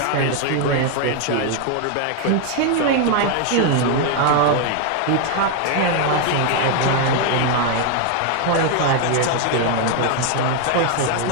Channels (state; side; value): different; both; correlation 0.00